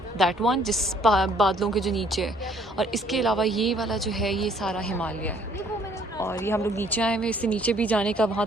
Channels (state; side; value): normal; both; correlation 0.61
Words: दैट वन जिस बादलों के जो नीचे है। और इसके अलावा ये वाला जो है ये सारा हिमालय है। और ये हम लोग नीचे आए हुए, इससे नीचे भी जाने का वहाँ